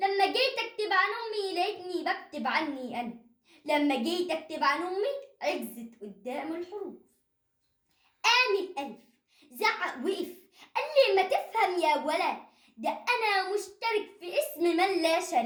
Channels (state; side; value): identical; both; correlation 1.00